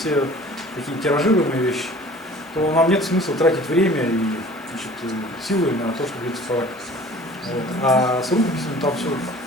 такие тиражируемые вещи, то нам нет смысла тратить время и, значит, силы на то, чтобы их цифровать. Вот. А с рукописями там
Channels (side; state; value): both; normal; correlation 0.47